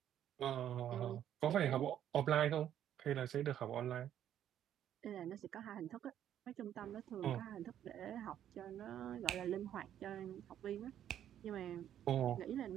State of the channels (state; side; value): quieter; left; 10.6 dB